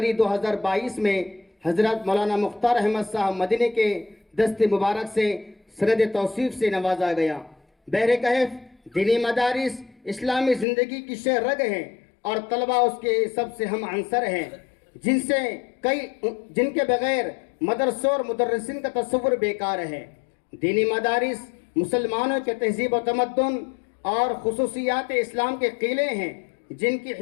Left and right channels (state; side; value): drops out; right; at 10.7 s